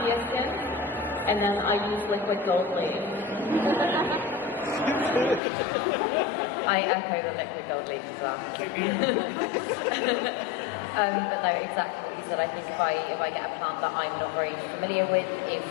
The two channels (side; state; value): right; drops out; at 5.4 s